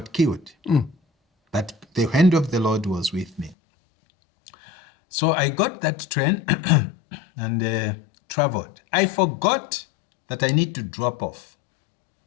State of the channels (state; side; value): drops out; right; at 3.6 s